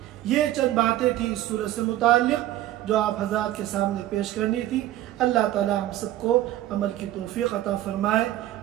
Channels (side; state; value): left; quieter; 14.1 dB